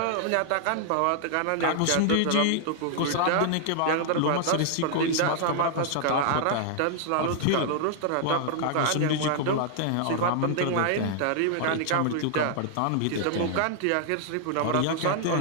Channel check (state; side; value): different; both; correlation -0.01